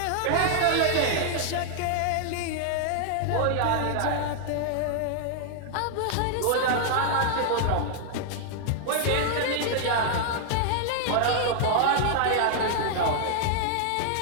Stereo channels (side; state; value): both; different; correlation 0.00